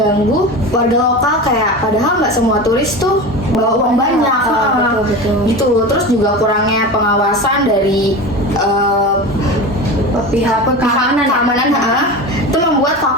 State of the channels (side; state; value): both; normal; correlation 0.28